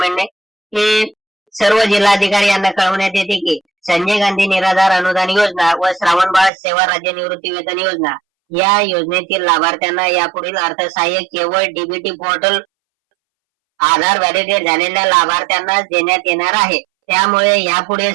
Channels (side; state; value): left; drops out; at 6.5 s